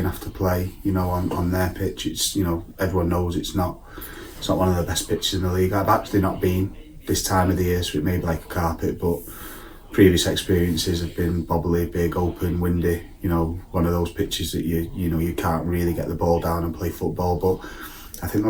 have to play, on their pitch, it's, everyone knows it's not one of the best pitches in the league. I've actually not been this time of the year, so it may be like a carpet, but previous experiences have been bobbly, big, open, windy, one of those pitches that you can't really get the ball down and play football. But I think the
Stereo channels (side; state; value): both; identical; correlation 1.00